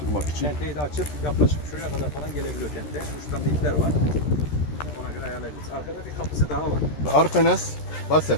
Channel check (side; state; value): right; late; 13 ms